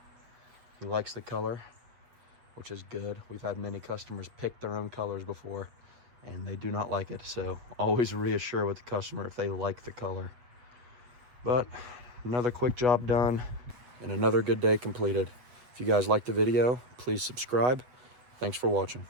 He likes the color, which is good. We've had many customers pick their own colors before, and they do not like it. So always reassure with the customer if they like the color. But another quick job done and another good day completed. If you guys liked the video, please subscribe. Thanks for watching.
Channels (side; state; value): left; late; 8.3 ms